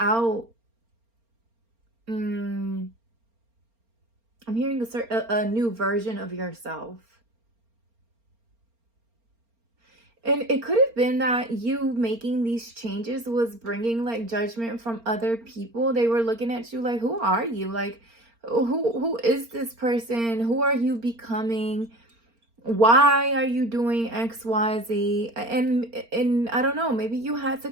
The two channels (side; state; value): left; late; 4.3 ms